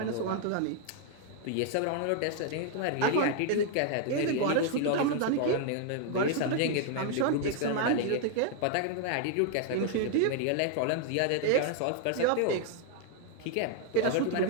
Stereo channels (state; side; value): different; both; correlation 0.00